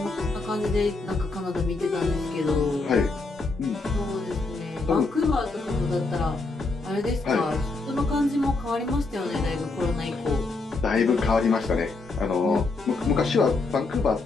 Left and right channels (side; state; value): right; quieter; 3.6 dB